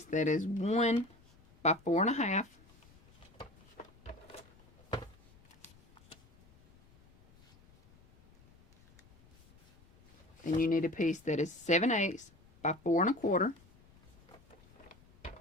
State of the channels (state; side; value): noise; left; rumble, 27 dB below the sound